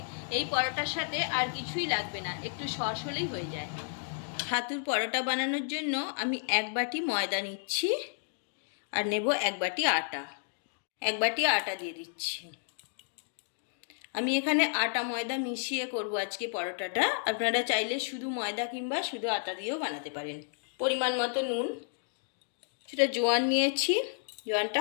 এই পরোটার সাথে আর কিছুই লাগবে না, একটু সস হলেই হয়ে যায়। ছাতুর পরোটা বানানোর জন্য আমি 1 বাটি ময়দা নিচ্ছি আর নেব 1 বাটি আটা। 1 বাটি আটা দিয়ে দিচ্ছি। আমি এখানে আটা ময়দা মিশিয়ে করব আজকে পরোটাটা। আপনারা চাইলে শুধু ময়দা কিংবা শুধু আটা দিয়েও বানাতে পারেন। পরিমাণ মতো নুন, সেটা জোয়ান নিয়েছি, জোয়ানটা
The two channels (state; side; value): silent; right; digital silence